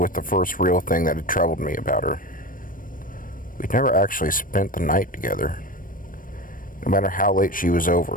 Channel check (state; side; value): late; right; 0.40 ms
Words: the first real thing that had troubled me about her. We'd never actually spent the night together. No matter how late she was